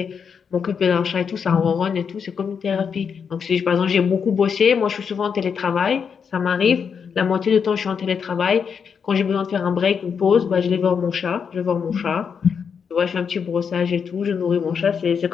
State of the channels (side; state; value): right; quieter; 6.6 dB